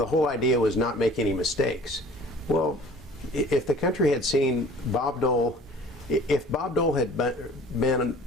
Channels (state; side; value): normal; both; correlation 0.48